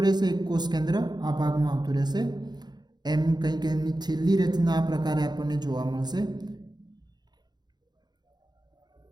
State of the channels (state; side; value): late; left; 0.20 ms